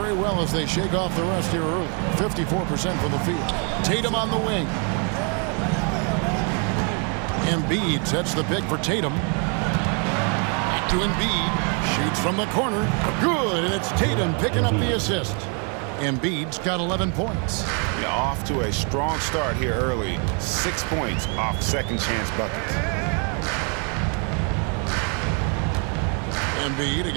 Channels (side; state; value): left; quieter; 38.2 dB